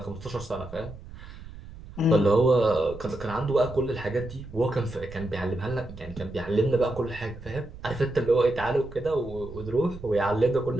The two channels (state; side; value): noise; right; rumble, 15 dB below the sound